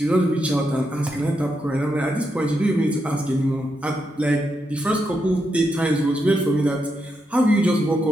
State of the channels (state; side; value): normal; both; correlation 0.83